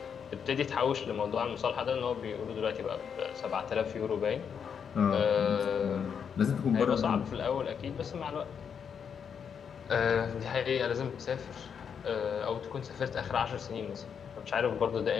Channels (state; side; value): quieter; right; 7.2 dB